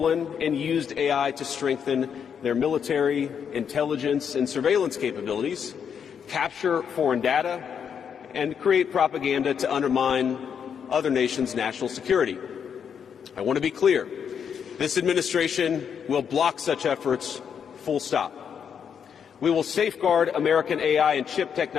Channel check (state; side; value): quieter; right; 7.5 dB